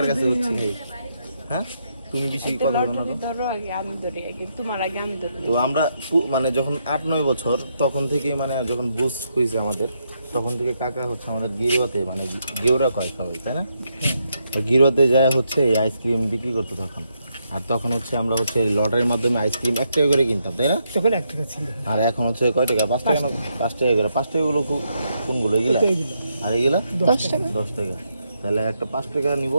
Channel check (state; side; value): inverted; both; correlation -0.79